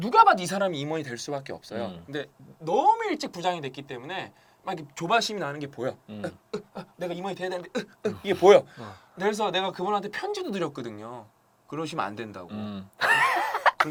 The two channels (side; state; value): both; identical; correlation 1.00